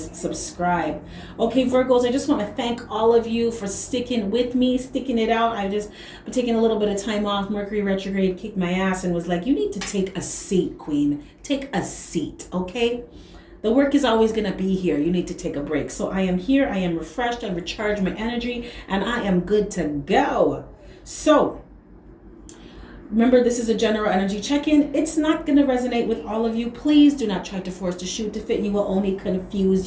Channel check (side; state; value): both; identical; correlation 1.00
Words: subscribe. Okay, Virgos, I just want to thank all of you for sticking with me, sticking it out. I've just been taking a little bit of time off. Mercury retrograde kicked my ass and was like, you need to take a seat, Queen. Take a seat, okay? The work is always going to be here. You need to take a break. So I am here. I am refreshed. I recharged my energy and I am good to go. So remember, this is a general energy check-in. It's not going to resonate with all of you. Please do not try to force the shoe to fit. You will only